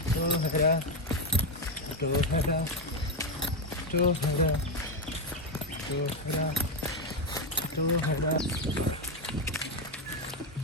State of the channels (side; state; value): both; normal; correlation 0.07